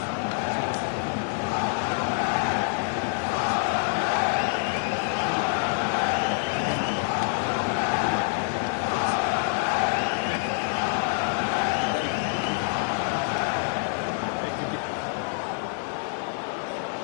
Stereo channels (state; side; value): silent; right; 59 dB below the other